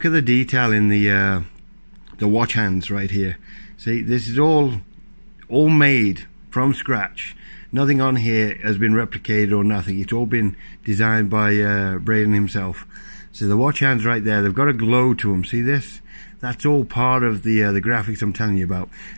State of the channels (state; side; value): inverted; both; correlation -1.00